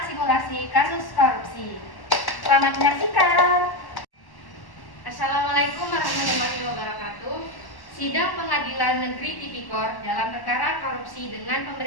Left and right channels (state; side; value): late; right; 1.1 ms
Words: simulasi kasus korupsi. Selamat menyaksikan. Assalamualaikum warahmatullahi wabarakatuh. Sidang Pengadilan Negeri Tipikor dalam perkara korupsi dengan